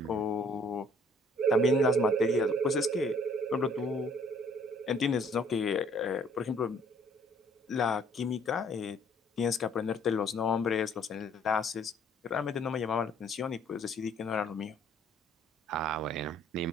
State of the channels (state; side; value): normal; both; correlation 0.60